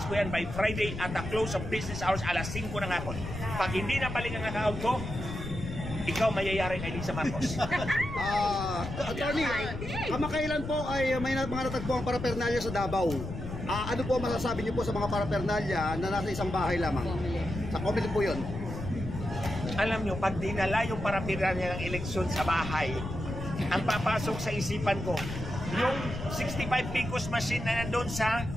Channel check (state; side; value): noise; left; rumble, 7 dB below the sound